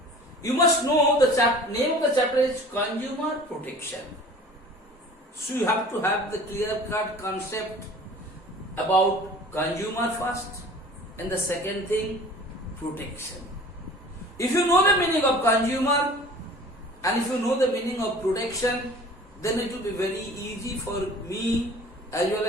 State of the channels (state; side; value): normal; both; correlation 0.45